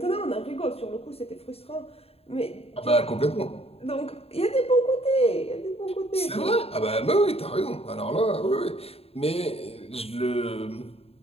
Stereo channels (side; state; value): right; late; 0.29 ms